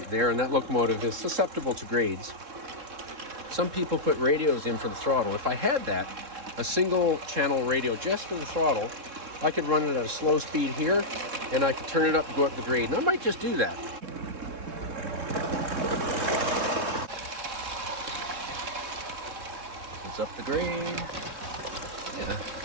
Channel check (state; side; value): late; left; 3.7 ms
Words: there, and that locomotive is susceptible to grades. Some people put radios in for the throttle. If I had that, a single channel radio just for the throttle, I could run it at a slow speed here, and I could turn it up to go up the grade. And I might just do that. It's up the grade. Yeah,